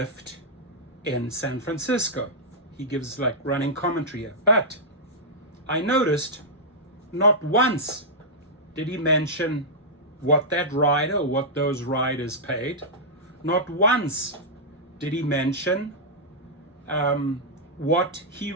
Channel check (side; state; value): both; normal; correlation -0.10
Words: in San Francisco. He gives like running commentary here. But I noticed not once did he mention what that rider or what those riders paid. Not once did he mention what he